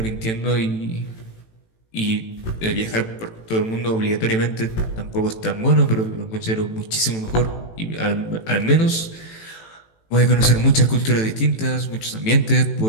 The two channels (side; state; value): right; late; 18 ms